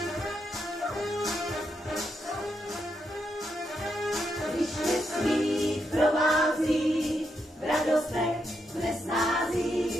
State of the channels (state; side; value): normal; both; correlation 0.82